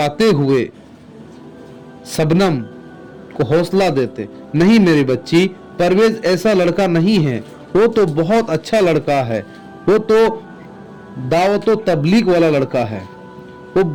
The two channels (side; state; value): both; identical; correlation 1.00